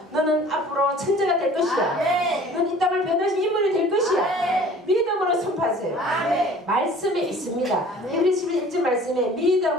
너는 앞으로 천재가 될 것이야. 너는 이 땅을 변화신 인물이 될 것이야. 믿음으로 선포하세요. 말씀에 있습니다. 히브리서 11절 말씀에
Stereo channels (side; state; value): both; normal; correlation 0.48